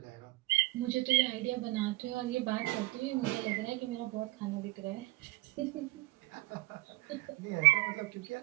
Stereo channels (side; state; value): left; quieter; 20.7 dB